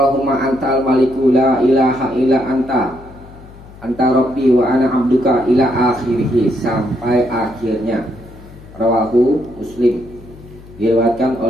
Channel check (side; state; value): left; noise; hum, 20 dB below the sound